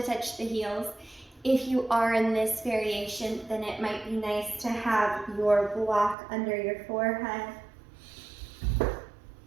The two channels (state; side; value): drops out; left; at 6.2 s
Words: touch the heels. If you are in this variation, then it might be nice to have your block under your forehead.